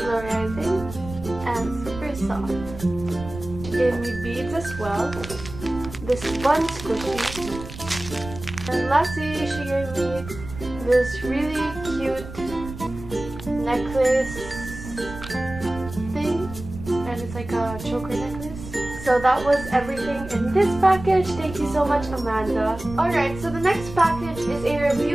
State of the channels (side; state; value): right; noise; rumble, 12 dB below the sound